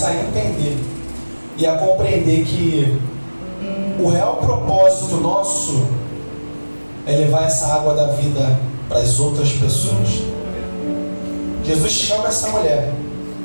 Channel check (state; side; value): inverted; both; correlation -1.00